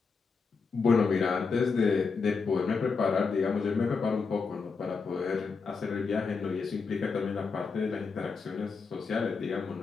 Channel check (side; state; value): right; quieter; 4.9 dB